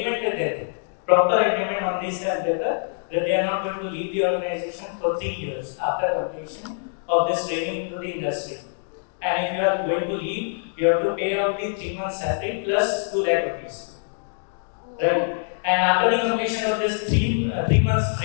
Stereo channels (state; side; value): silent; right; digital silence